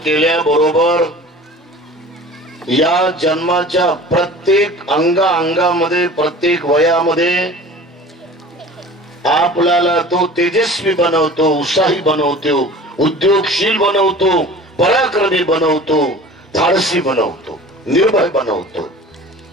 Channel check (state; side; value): normal; both; correlation 0.41